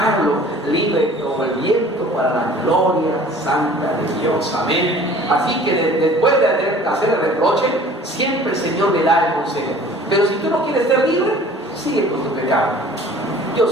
libre como el viento para la gloria santa de Dios. Amén. Así que después de hacer el reproche, siempre el Señor le da el consejo. Pero si tú no quieres ser libre, sigue con tu pecado. Yo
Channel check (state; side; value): normal; both; correlation 0.48